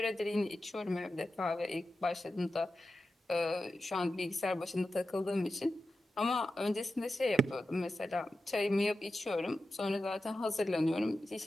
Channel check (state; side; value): normal; both; correlation 0.92